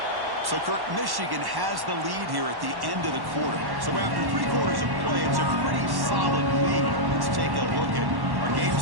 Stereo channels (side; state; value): left; late; 1.1 ms